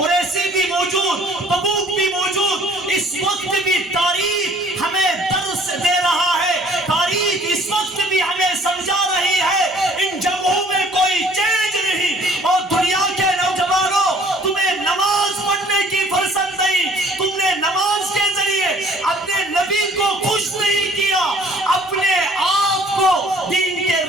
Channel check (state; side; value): normal; both; correlation 0.56